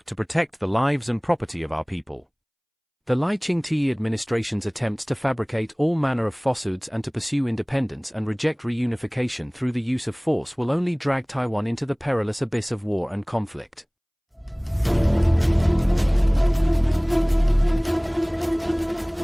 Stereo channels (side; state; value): both; identical; correlation 1.00